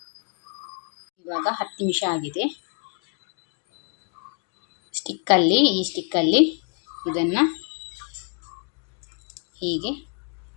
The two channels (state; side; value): quieter; right; 38.2 dB